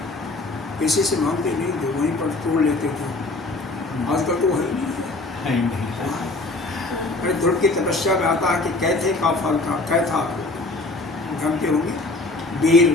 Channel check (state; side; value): quieter; right; 3.1 dB